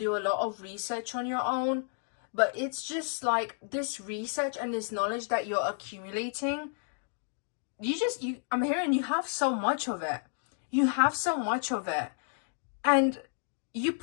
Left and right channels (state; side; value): silent; right; 57 dB below the other